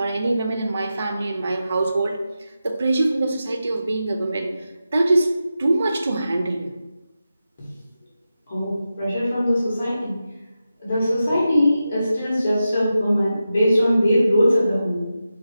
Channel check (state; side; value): inverted; both; correlation -0.90